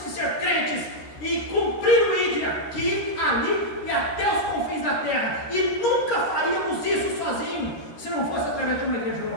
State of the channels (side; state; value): right; late; 13 ms